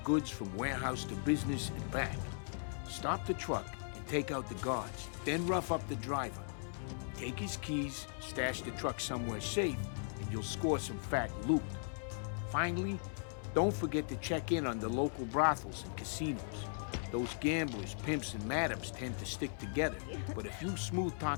goods from warehouse to business and back. Stop the truck and take out the guards, then rough up the driver. Take his keys, stash the truck somewhere safe, and you'll score some fat loot. Finally, don't forget to check in on the local brothels and casinos. Those gamblers, pimps, and madams tend to stick together, but if you smooth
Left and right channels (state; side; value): silent; right; digital silence